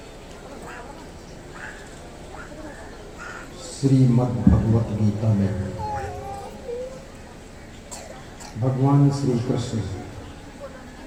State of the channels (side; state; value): both; identical; correlation 1.00